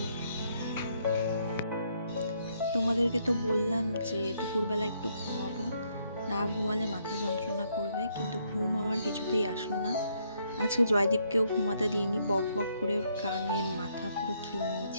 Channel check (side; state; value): both; inverted; correlation -0.72